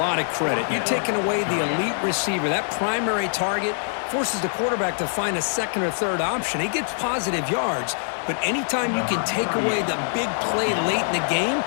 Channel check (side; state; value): right; silent; digital silence